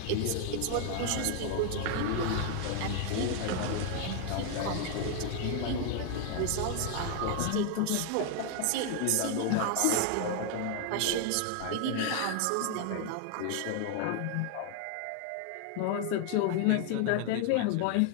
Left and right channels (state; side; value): different; both; correlation 0.00